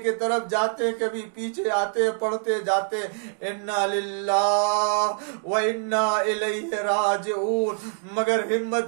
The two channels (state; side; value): silent; left; digital silence